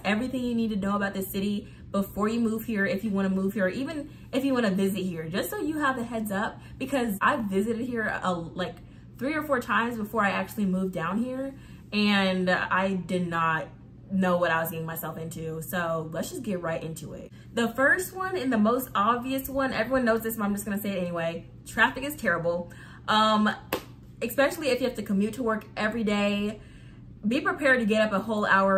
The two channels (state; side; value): identical; both; correlation 1.00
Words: everything you need to know about this city before you move here, if you want to move here, or even if you want to visit here, just so you have a heads up, because I've visited here like 3 or 4 times before I actually moved down here, and I did not know what I was getting myself into. So let's just get right into it. The first one and the most obvious one, everyone knows this, but I'm just gonna say it anyway. Traffic is terrible. Especially if you have to commute to work every day. Be prepared to get up